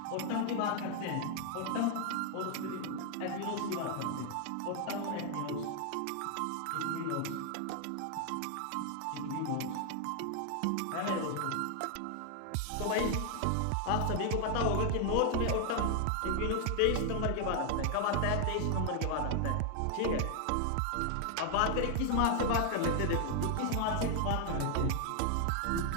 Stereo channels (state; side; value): different; both; correlation 0.00